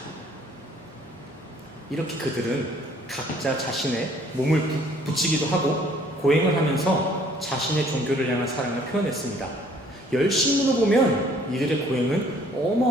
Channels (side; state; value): both; normal; correlation 0.59